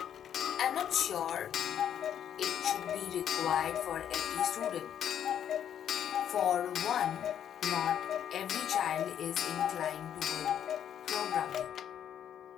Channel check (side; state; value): right; quieter; 9.5 dB